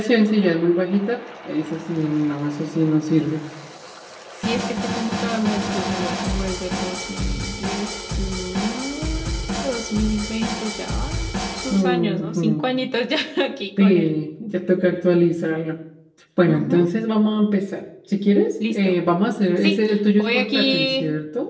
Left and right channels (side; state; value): both; identical; correlation 1.00